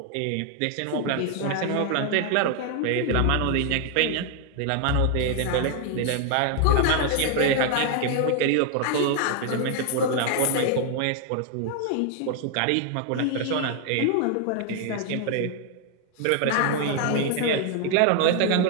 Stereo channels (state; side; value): different; both; correlation 0.00